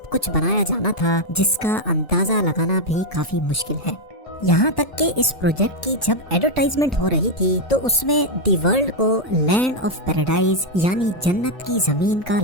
کچھ بنایا جانا تھا جس کا اندازہ لگانا بھی کافی مشکل ہے۔ یہاں تک کہ اس پروجیکٹ کی جب ایڈورٹائزمنٹ ہو رہی تھی تو اس میں دی ورلڈ کو لینڈ آف پیراڈائز یعنی جنت کی زمین کا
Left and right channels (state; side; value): late; right; 1.0 ms